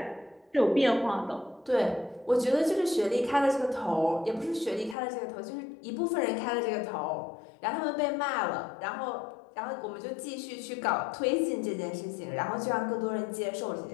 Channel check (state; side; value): drops out; right; at 5.0 s